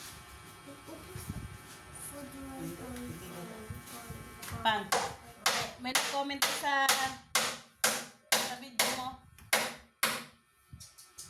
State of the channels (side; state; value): both; identical; correlation 1.00